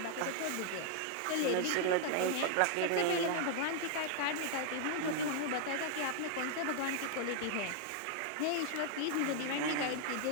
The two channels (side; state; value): both; different; correlation 0.00